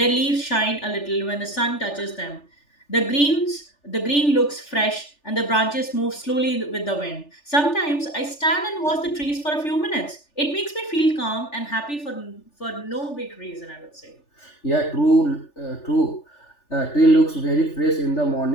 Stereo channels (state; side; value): late; right; 3.4 ms